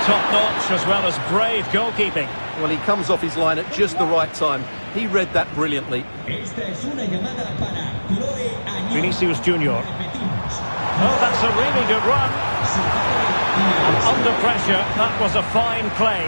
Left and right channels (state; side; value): inverted; both; correlation -1.00